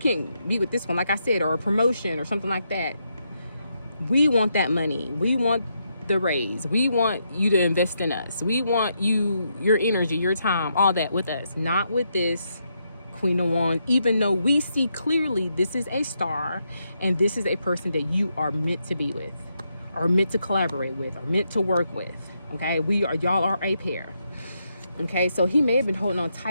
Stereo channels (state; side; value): inverted; both; correlation -0.80